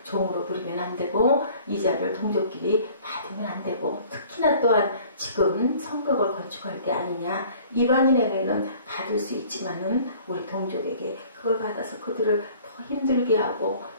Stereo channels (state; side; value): inverted; both; correlation -0.51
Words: 종으로 부리면 안 되고 이자를 동족끼리 받으면 안 되고 특히나 또한 지금 성벽을 건축할 때 아니냐. 이방인에게는 받을 수 있지만은 우리 동족에게 그걸 받아서 그들을 더 힘들게 하고